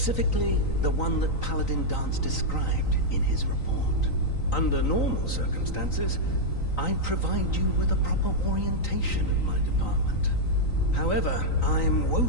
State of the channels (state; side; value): late; right; 3.9 ms